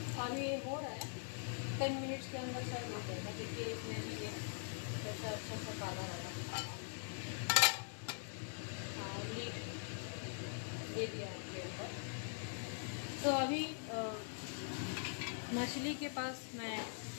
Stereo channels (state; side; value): silent; right; digital silence